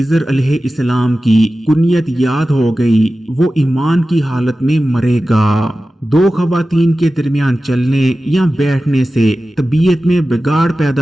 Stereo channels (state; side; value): normal; both; correlation 0.95